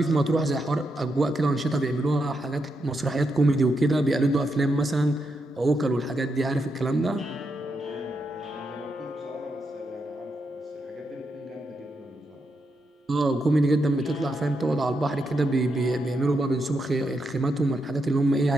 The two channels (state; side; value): normal; both; correlation 0.83